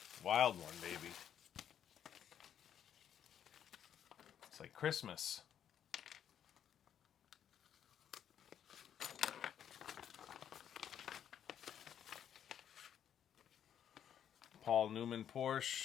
Wild one, baby. It's like Christmas. Paul Newman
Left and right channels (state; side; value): quieter; right; 9.3 dB